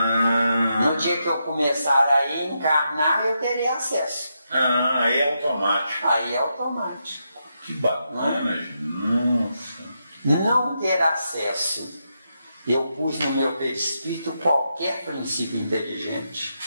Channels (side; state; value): both; inverted; correlation -0.83